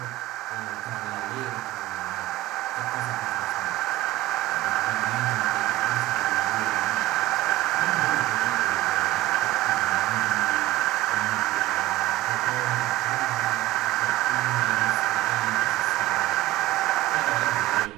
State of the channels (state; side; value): quieter; left; 16.6 dB